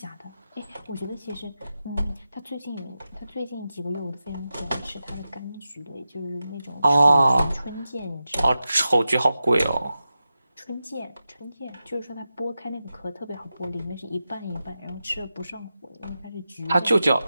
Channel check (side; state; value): both; inverted; correlation -0.91